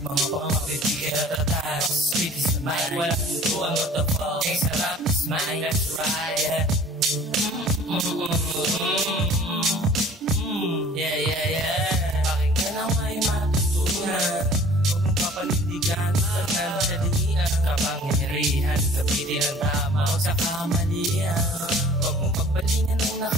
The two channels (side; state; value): both; normal; correlation 0.49